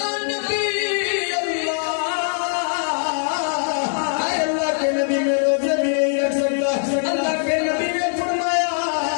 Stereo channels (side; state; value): right; silent; digital silence